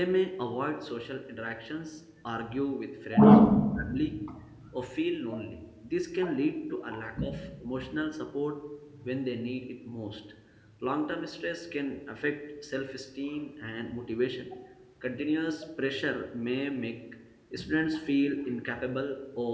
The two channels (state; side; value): identical; both; correlation 1.00